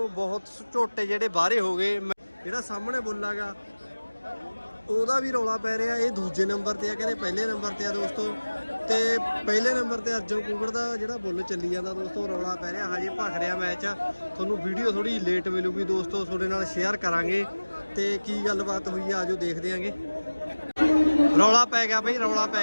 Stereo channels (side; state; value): both; inverted; correlation -1.00